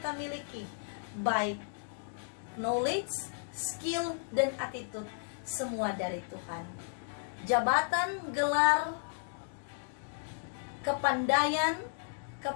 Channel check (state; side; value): silent; right; digital silence